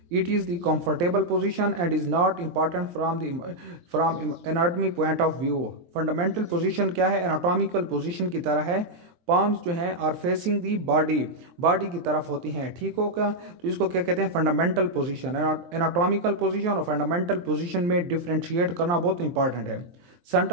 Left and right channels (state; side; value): late; left; 23 ms